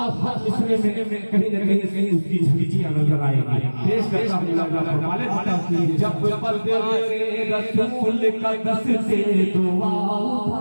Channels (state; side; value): inverted; both; correlation -1.00